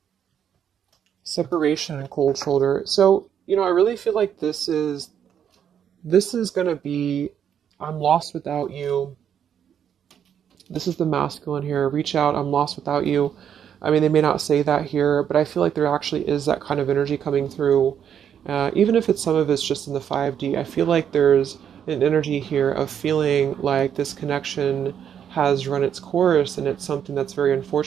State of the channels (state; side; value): quieter; left; 8.8 dB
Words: Separation and cold shoulder. So, I really feel like this is gonna be, I'm lost without you. This is the masculine here. Reach out, I'm lost without you. I mean, they may not say that here, but I feel like there actually is that kind of energy coming through. Even if some of it's just in the 5D, I feel like there's an energy here of feeling like this connection has run its course, and it's something that's very